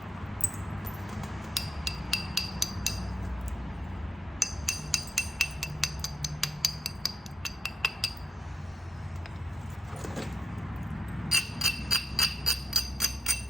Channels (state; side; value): normal; both; correlation 0.78